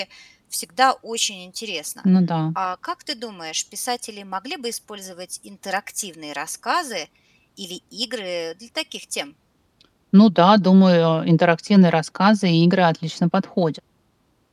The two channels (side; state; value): both; identical; correlation 1.00